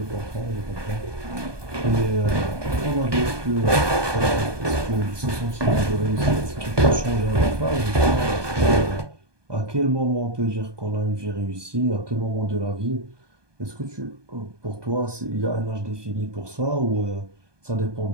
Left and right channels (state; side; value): late; left; 1.2 ms